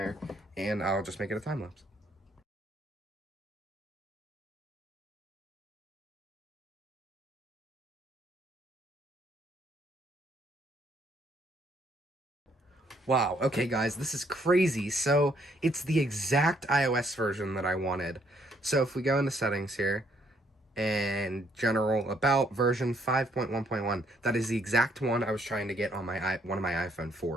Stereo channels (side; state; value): both; normal; correlation 0.69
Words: and I'll just make it a time lapse. Wow, okay guys, this is crazy. So, it's the exact iOS version that I wanted. So if we go into settings here, and general about version 5.1.1, that is the exact one I was trying to get on my one of my iPhone